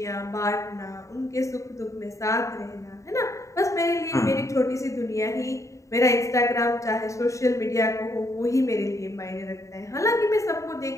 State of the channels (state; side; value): late; right; 0.15 ms